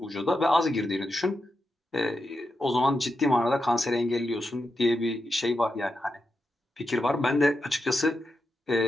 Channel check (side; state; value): both; normal; correlation 0.87